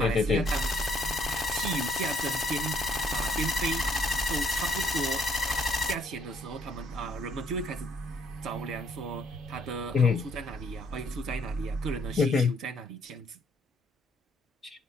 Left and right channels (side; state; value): both; normal; correlation 0.67